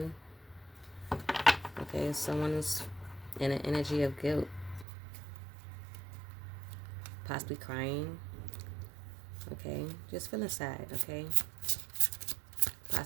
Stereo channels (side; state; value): left; drops out; at 4.9 s